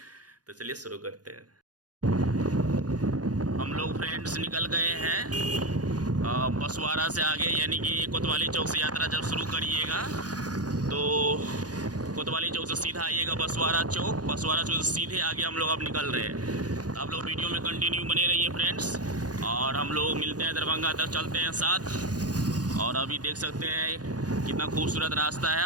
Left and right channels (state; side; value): late; left; 0.69 ms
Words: तो चलिए शुरू करते हैं। हम लोग फ्रेंड्स निकल गए हैं बसवाड़ा से आगे, यानी कि कोतवाली चौक से यात्रा जब शुरू करिएगा तो कोतवाली चौक से सीधा आइएगा बसवाड़ा चौक से सीधे आगे हम लोग अब निकल रहे हैं। तो आप लोग वीडियो में कंटिन्यू बने रहिए फ्रेंड्स। और हम लोग मिलते हैं दरभंगा तक, चलते हैं साथ। और अभी देख सकते हैं कितना खूबसूरत रास्ता है